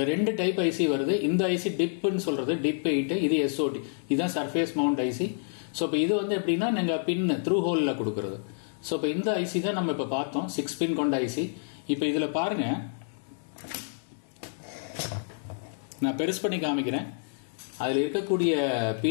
2 டைப் ஐசி வருது. இந்த ஐசி டிப்னு சொல்றது, டிப் 8. இது SOT, இதுதான் சர்ஃபேஸ் மவுண்ட் ஐசி. ஸோ இப்போ இது வந்து எப்படின்னா நீங்க பின் த்ரூ ஹோல்ல கொடுக்கறது. ஸோ இப்போ இந்த ஐசி தான் நம்ம இப்ப பார்த்தோம், 6 பின் கொண்ட ஐசி. இப்போ இதுல பாருங்க, நான் பெருசு பண்ணி காமிக்கிறேன். அதுல இருக்கக்கூடிய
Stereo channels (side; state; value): right; silent; digital silence